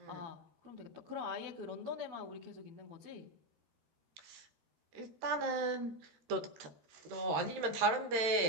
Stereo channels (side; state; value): left; late; 13 ms